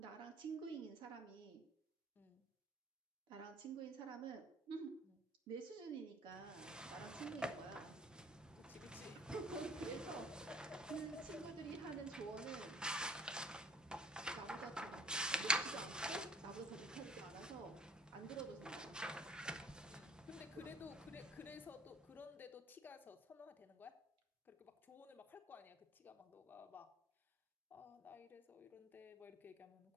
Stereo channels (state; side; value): normal; both; correlation 0.55